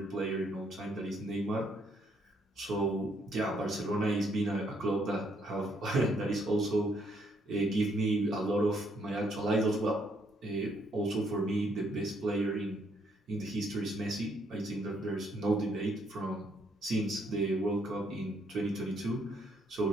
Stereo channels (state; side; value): normal; both; correlation 0.71